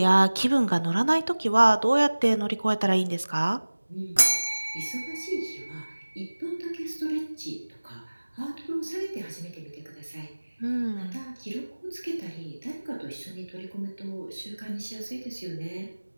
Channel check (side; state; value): both; inverted; correlation -1.00